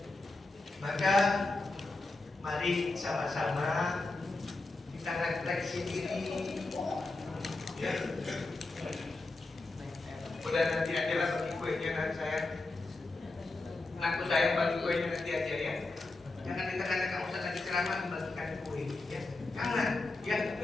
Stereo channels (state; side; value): quieter; right; 3.2 dB